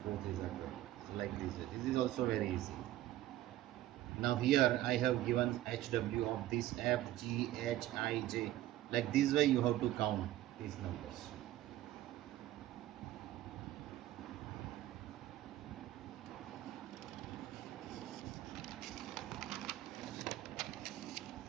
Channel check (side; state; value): left; quieter; 14.7 dB